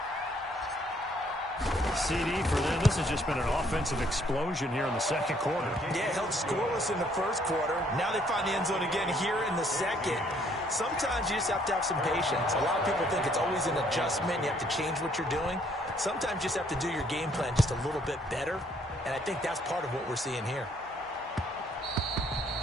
CD for them. This has just been an offensive explosion here in the second quarter. Yeah, held scoreless in the first quarter. Now they find the end zone again here in the second. Sometimes you just have to have some patience. A lot of people think it's always an adjustment. You have to change what you're doing. Sometimes you just have to do your game plan just a little bit better. And I think that's part of what we're seeing here.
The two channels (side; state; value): both; normal; correlation 0.65